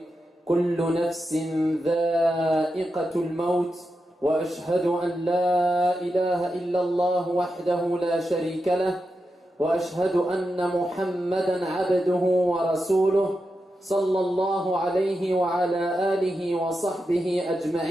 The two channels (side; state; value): both; normal; correlation 0.88